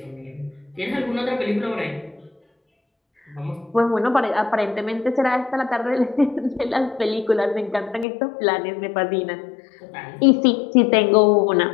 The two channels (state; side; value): drops out; right; at 8.1 s